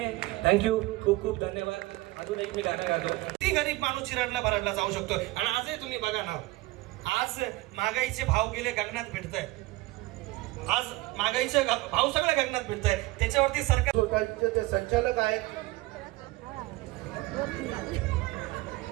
थँक्यू, खूप खूप धन्यवाद. अजून एक मी गाणं गातो. ती गरीब माणूस चिराडला भराडला जाऊ शकतो. आणि आजही तुम्ही बघा ना, आज महागाईचे भाव गेले गगनात भिडताय. आज महागाईचे भाव सगळ्या गगनात भिडताय. त्याच्यावरती सरकार सोसायटीचे ते संचालक आहेत.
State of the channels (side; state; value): left; quieter; 20.1 dB